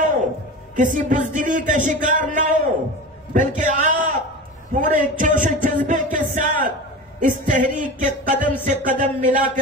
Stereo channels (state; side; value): normal; both; correlation 0.30